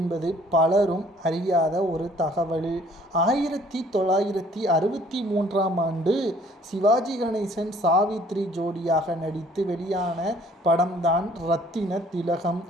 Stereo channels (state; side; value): normal; both; correlation 0.58